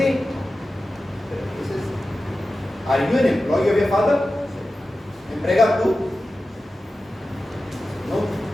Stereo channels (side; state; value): both; normal; correlation 0.94